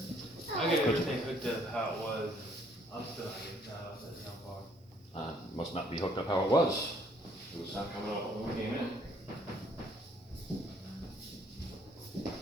I got everything hooked up how it was. I'm still not getting that off that sound bar. Must not be hooked up how it was. It was not coming out when we came in.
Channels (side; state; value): both; normal; correlation 0.64